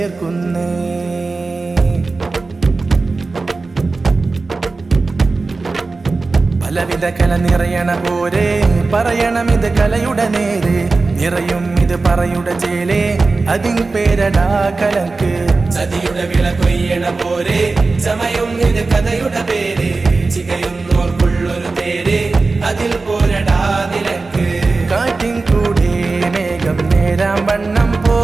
പലവിധ കല നിറയണ പോരെ പറയണം ഇത് കലയുടെ നേരെ നിറയും ഇത് പറയുടെ ചേലേ അതിൻ പേരടാ കലക്ക് ചതിയുടെ വിള കൊയ്യണ പോരെ ചമയും ഇത് കഥയുടെ പേര് ചികയുന്നോർക്കുള്ളൊരു തേര് അതിൽ പോരടാ നിലക്ക് കാറ്റിൻ കൂടെ മേഘം നേരാം വണ്ണം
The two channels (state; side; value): quieter; left; 3.8 dB